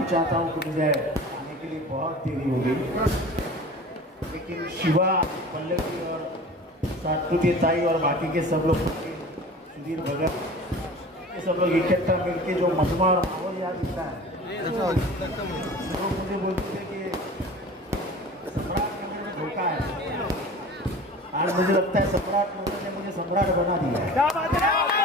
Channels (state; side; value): normal; both; correlation 0.39